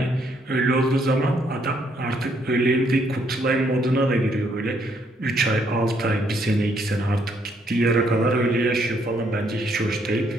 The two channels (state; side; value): normal; both; correlation 0.71